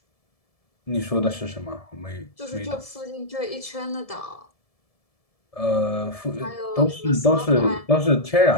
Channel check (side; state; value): right; late; 1.7 ms